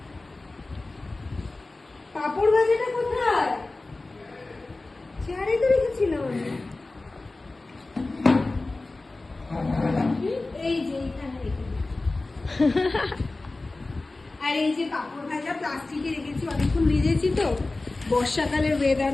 পাঁপড় ভাজাটা কোথায়? চেয়ারে তো রেখেছিলাম আমি। এই যে এইখানে রেখে আর এই যে পাঁপড় ভাজা প্লাস্টিকে রেখেছি, অনেকক্ষণ ভিজেছি তো, বর্ষাকালের ওয়েদার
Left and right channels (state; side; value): quieter; right; 3.2 dB